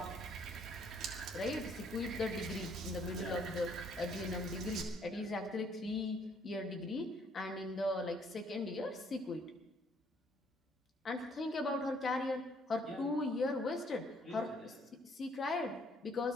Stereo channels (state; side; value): normal; both; correlation 0.65